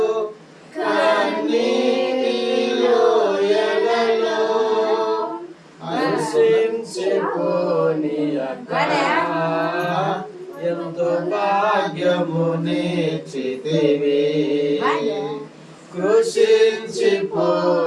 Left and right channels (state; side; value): identical; both; correlation 1.00